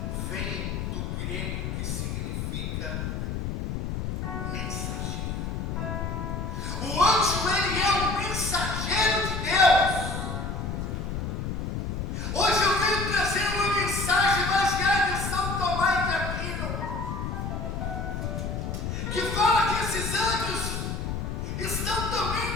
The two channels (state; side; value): noise; left; rumble, 3 dB below the sound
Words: vem do grego que significa mensageiro. O anjo, ele é um mensageiro de Deus. Hoje eu venho trazer uma mensagem baseada em São Tomás de Aquino, que fala que esses anjos estão